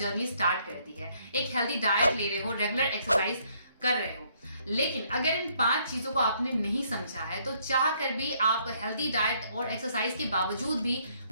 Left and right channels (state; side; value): inverted; both; correlation -0.68